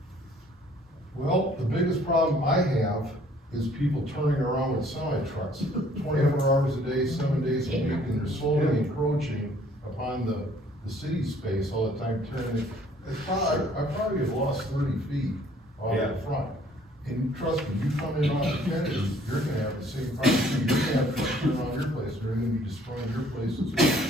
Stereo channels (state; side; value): normal; both; correlation 0.59